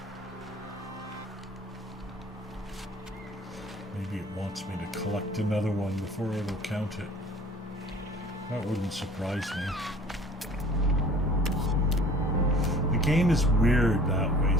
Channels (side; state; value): both; normal; correlation 0.49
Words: Maybe it wants me to collect another one before it'll count it. That wouldn't surprise me. The game is weird that way